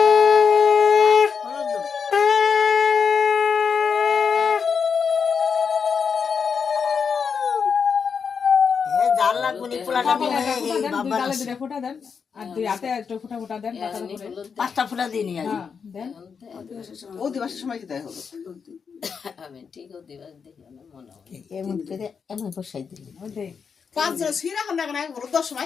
ফোটা দেন আর দুই হাতে একটা ফোটা দেন পাঁচটা ফুটা দিয়ে নিয়ে আসি দেন ও দিবসের সময় যেতে হলো আমি ঠিক ও দিবাস দেখি আমার মনে হয় এমন করে এমন বসাই দিলি ওই দে 5 জন সিরা কোন না হলো 10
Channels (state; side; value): quieter; right; 6.2 dB